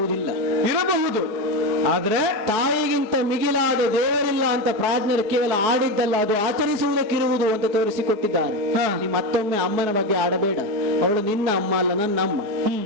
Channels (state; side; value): late; left; 4.9 ms